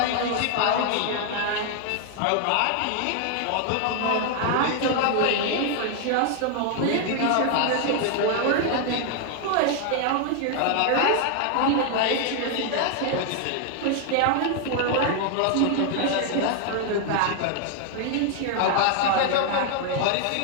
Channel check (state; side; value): different; both; correlation 0.00